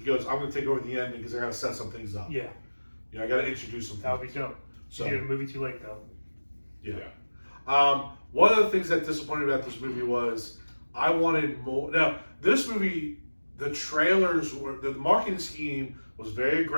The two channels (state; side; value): inverted; both; correlation -1.00